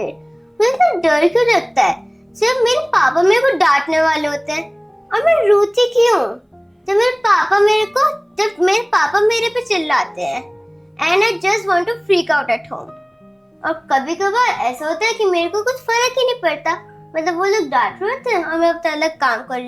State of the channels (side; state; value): both; identical; correlation 1.00